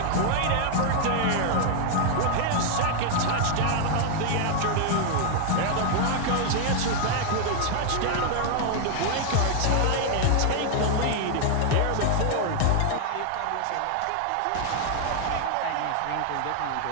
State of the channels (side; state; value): both; different; correlation 0.00